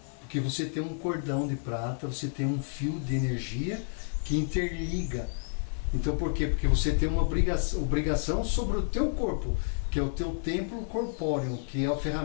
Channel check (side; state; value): right; silent; digital silence